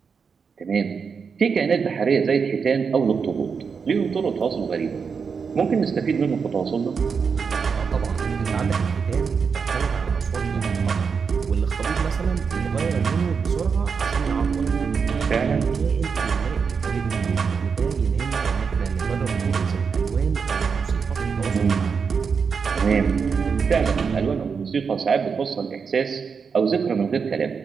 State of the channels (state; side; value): quieter; left; 5.8 dB